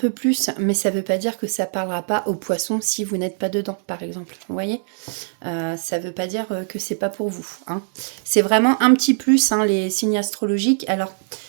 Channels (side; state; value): left; silent; digital silence